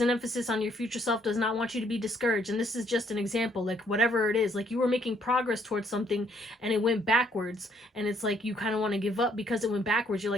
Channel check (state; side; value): normal; both; correlation 0.67